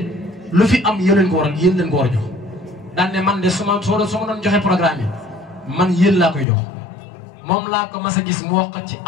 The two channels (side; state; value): right; drops out; at 6.5 s